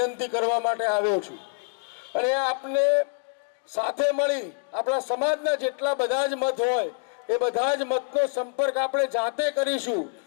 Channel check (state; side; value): silent; right; 61 dB below the other